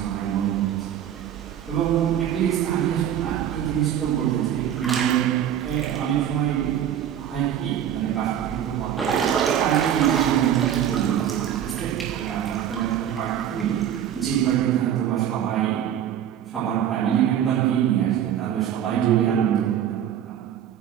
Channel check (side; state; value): left; quieter; 10.1 dB